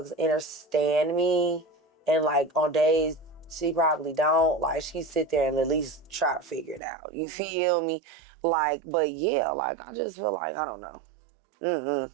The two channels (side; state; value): left; drops out; at 6.8 s